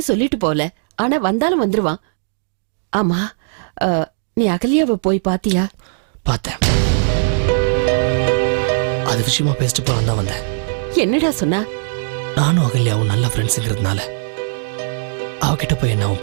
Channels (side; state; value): left; silent; digital silence